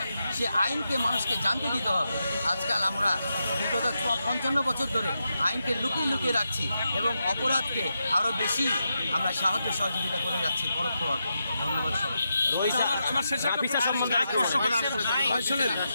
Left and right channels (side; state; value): both; inverted; correlation -0.86